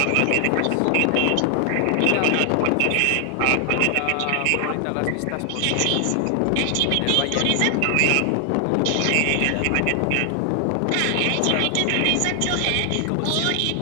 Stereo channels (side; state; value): both; different; correlation 0.00